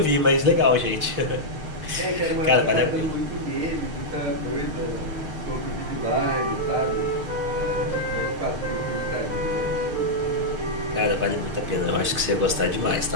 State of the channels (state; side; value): late; left; 6.5 ms